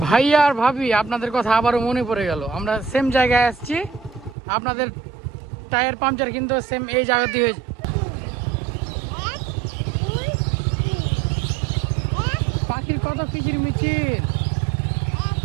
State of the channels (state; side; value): drops out; left; at 4.4 s